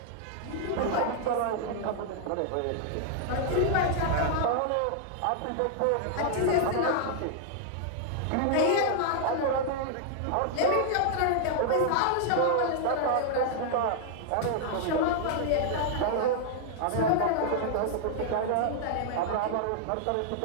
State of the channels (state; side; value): different; both; correlation -0.01